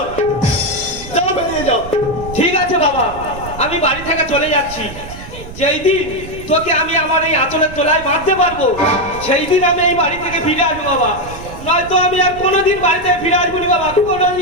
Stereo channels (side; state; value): right; noise; rumble, 14 dB below the sound